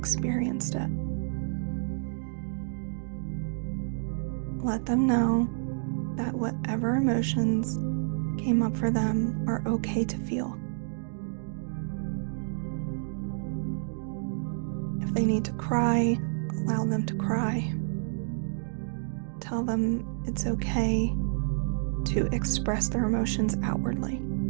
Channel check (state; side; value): silent; left; digital silence